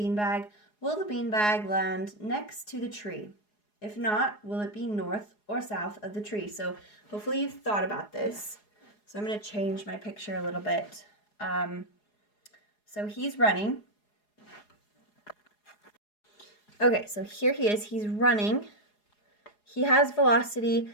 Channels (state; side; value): late; right; 4.8 ms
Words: Will the beanbag land next to the tree? If not, will it be north or south of the tree? So hopefully you've thought about this. So I'm going to change my picture a little bit. So he's running. Okay, so here he is. He's running. He has velocity.